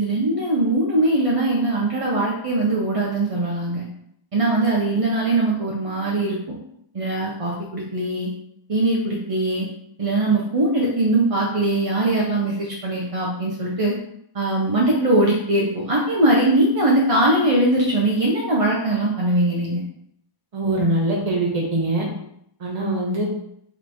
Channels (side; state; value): left; late; 1.0 ms